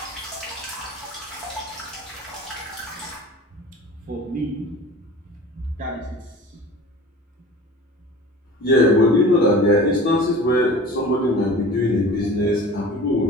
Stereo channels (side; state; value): both; normal; correlation 0.40